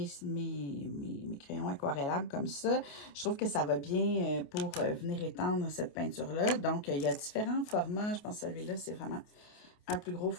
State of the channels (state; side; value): late; right; 28 ms